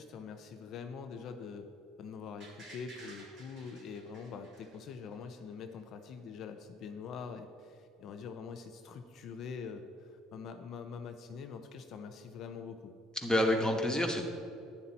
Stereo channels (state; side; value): normal; both; correlation 0.69